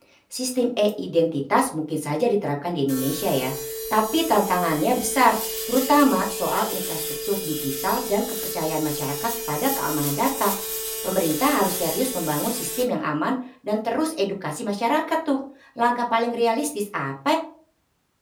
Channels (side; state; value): both; identical; correlation 1.00